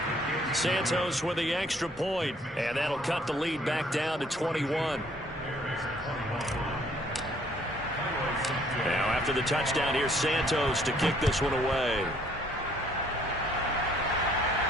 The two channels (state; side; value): normal; both; correlation 0.62